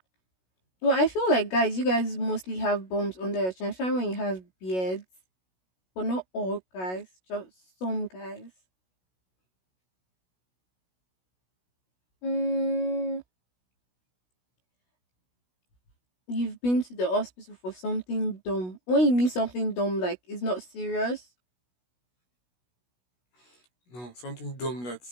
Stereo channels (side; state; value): right; late; 16 ms